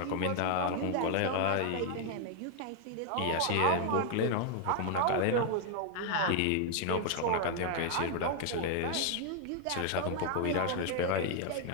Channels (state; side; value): different; both; correlation 0.00